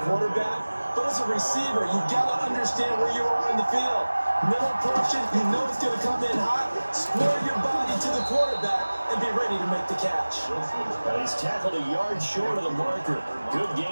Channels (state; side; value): inverted; both; correlation -1.00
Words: quarterback, but as a receiver, you've got to understand where you are in the field. Middle portion, you know it's going to come in hot. Square your body to the quarterback and be ready to make the catch. And he's tackled a yard short of the marker. Good